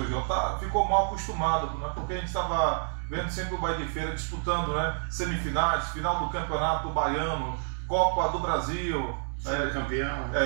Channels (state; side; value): silent; left; digital silence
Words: João, ficou mal acostumado, né? Porque a gente estava vendo sempre o Bahia de Feira disputando, né, semifinais, final do Campeonato Baiano, Copa do Brasil, campeão.